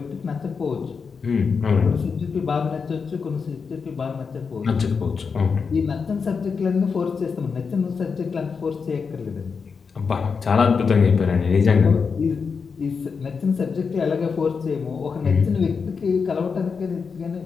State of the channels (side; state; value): right; quieter; 5.5 dB